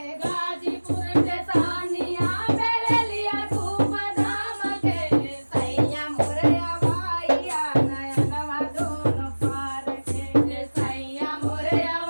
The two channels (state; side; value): inverted; both; correlation -1.00